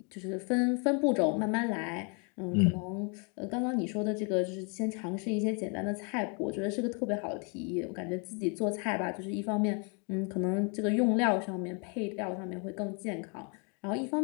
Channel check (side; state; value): right; quieter; 35.9 dB